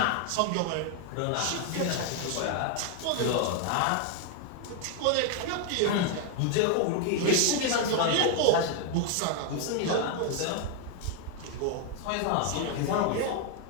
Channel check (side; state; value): both; different; correlation 0.00